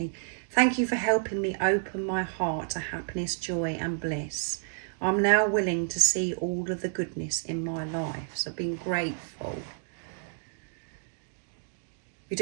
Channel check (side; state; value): left; silent; digital silence